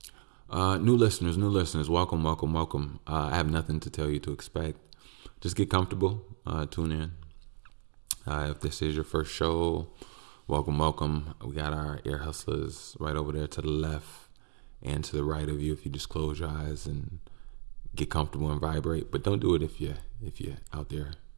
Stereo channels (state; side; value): silent; left; 55 dB below the other